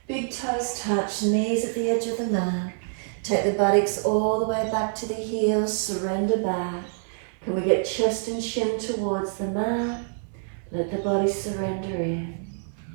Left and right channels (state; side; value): silent; left; 57 dB below the other